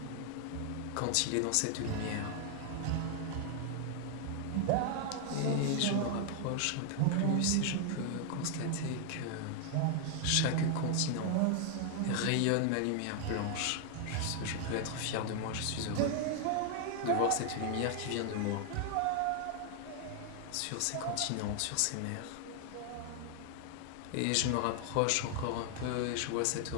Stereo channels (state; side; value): different; both; correlation 0.00